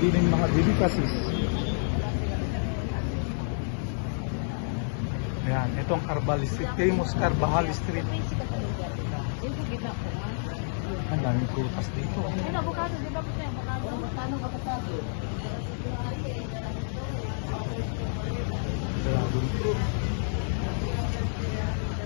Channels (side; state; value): right; silent; digital silence